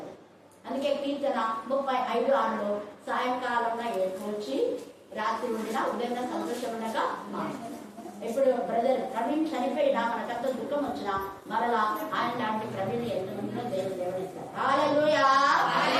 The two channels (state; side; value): identical; both; correlation 1.00